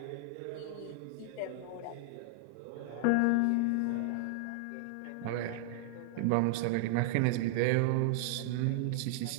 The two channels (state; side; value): different; both; correlation -0.01